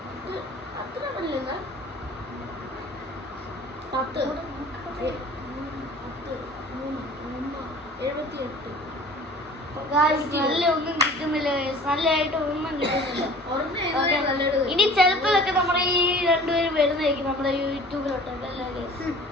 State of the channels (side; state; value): both; normal; correlation 0.45